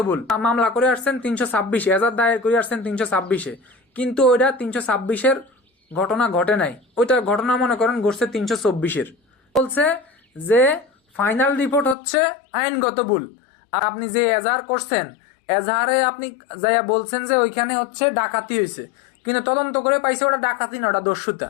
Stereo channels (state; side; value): drops out; right; at 12.0 s